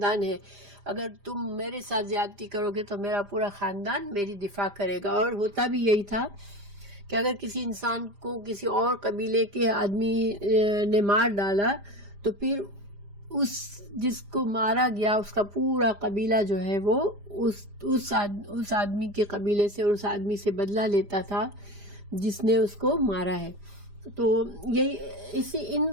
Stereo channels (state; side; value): late; left; 5.0 ms